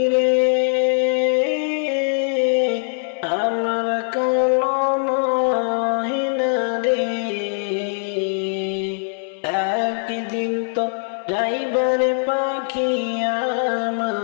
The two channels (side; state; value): right; silent; 62 dB below the other